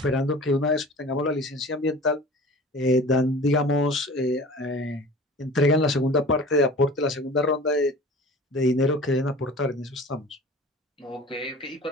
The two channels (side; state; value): both; normal; correlation 0.41